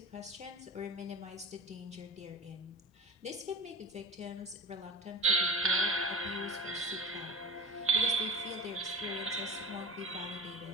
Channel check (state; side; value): normal; both; correlation 0.34